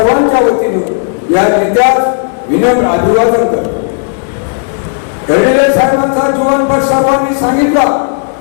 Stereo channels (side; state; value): right; silent; digital silence